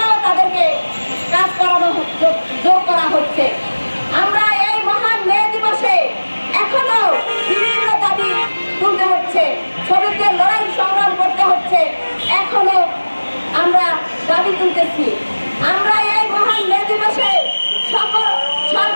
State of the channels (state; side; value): inverted; both; correlation -1.00